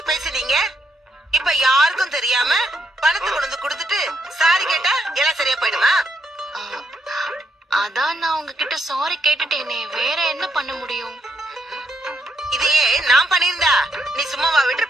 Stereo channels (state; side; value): normal; both; correlation 0.79